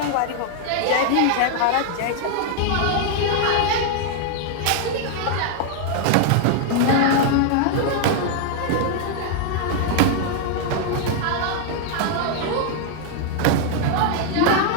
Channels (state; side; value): different; both; correlation 0.00